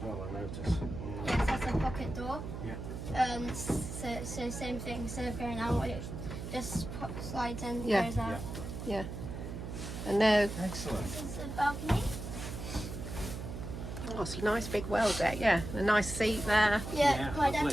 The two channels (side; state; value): right; noise; hum, 7 dB below the sound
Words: well, I noticed. Yes, that's a pocket door. Yeah. So same thing, instead of going out, it just slides in, Yeah. goes out. Yeah. And now, Excellent. This is the balcony. oh, it's a nice big well deck. Yeah, a nice seat there. Yeah, Yeah, my dad